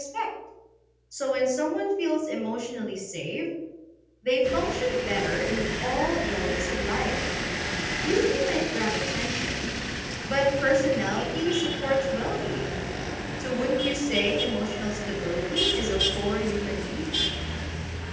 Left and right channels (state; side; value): identical; both; correlation 1.00